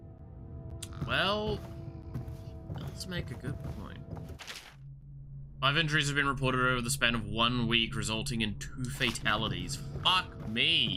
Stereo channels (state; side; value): identical; both; correlation 1.00